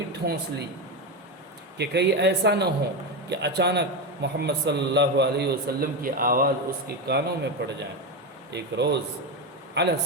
ٹھونس لی کہ کہیں ایسا نہ ہو کہ اچانک محمد صلی اللہ علیہ وسلم کی آواز اس کے کانوں میں پڑ جائیں۔ ایک روز علی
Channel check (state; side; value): normal; both; correlation 0.14